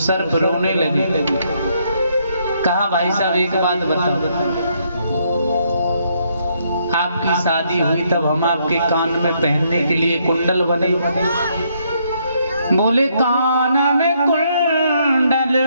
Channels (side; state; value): both; inverted; correlation -0.72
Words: रोने लगे। कहा भाई साहब एक बात बताओ, आपकी शादी हुई तब हम आपके कान में पहनने के लिए कुंडल बने। बोले कान में कुंडल